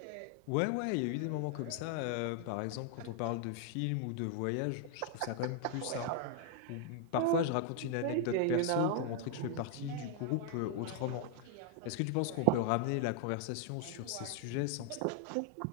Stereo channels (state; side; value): different; both; correlation 0.00